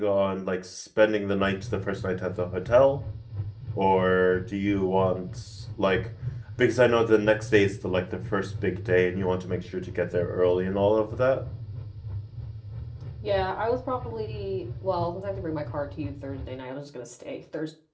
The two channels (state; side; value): identical; both; correlation 1.00